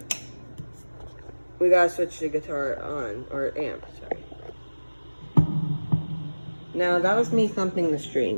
we gotta switch the guitar on, or amp, sorry. Now, that was me thumping the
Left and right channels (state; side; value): inverted; both; correlation -1.00